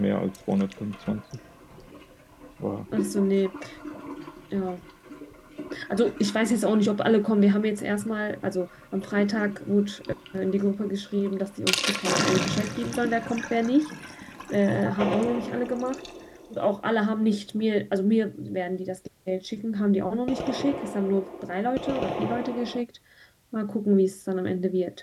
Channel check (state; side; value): identical; both; correlation 1.00